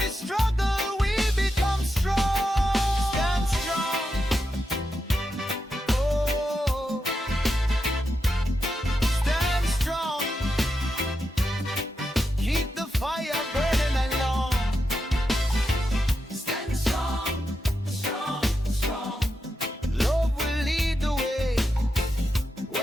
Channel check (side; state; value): both; normal; correlation 0.87